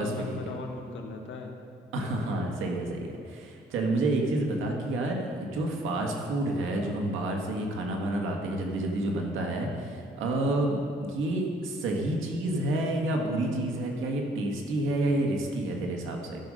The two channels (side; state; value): both; normal; correlation 0.62